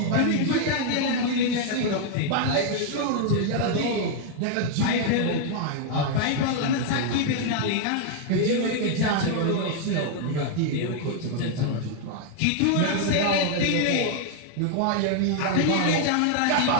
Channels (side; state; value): both; different; correlation 0.00